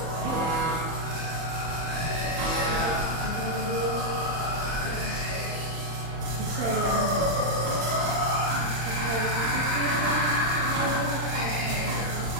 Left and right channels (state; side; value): late; left; 31 ms